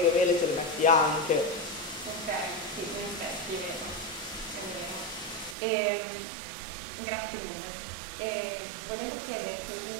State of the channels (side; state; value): left; drops out; at 5.6 s